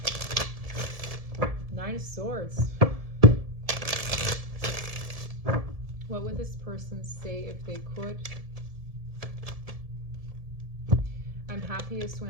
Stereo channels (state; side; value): late; left; 1.7 ms